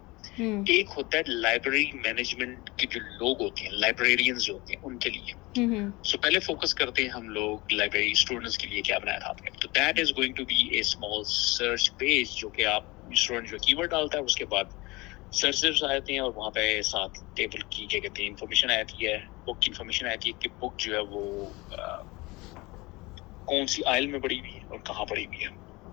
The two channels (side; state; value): right; quieter; 23.0 dB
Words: ایک ہوتا ہے لائبریری مینجمنٹ کے جو لوگ ہوتے ہیں, لائبریرینز جو ہوتے ہیں ان کے لیے. سو پہلے فوکس کرتے ہیں ہم لوگ لائبریری اسٹوڈنٹس کے لیے کیا بنایا تھا آپ نے. تو that is going to be a small search page جو کہ آپ اسٹوڈنٹ جو کی ورڈ ڈالتا ہے اس کے بعد سرچز آتے ہیں اور وہاں پہ ساتھ ٹیبل کی کیا کہتے ہیں انفارمیشن آتی ہے, بک کی انفارمیشن آتی ہے کہ بک جو ہے وہ کون سی آئل میں پڑی ہوئی ہے اور کہاں پڑی ہوئی